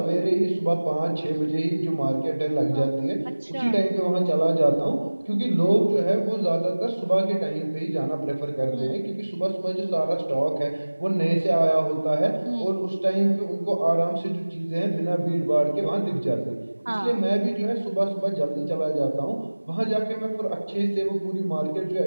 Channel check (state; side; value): inverted; both; correlation -1.00